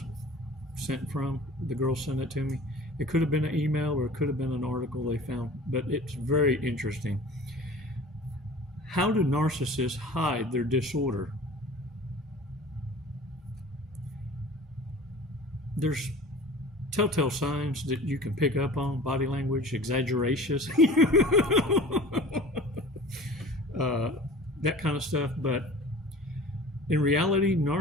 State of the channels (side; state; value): both; normal; correlation 0.42